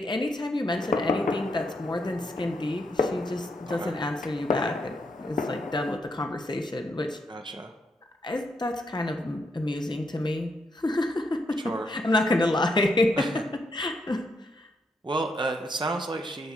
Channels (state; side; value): normal; both; correlation 0.78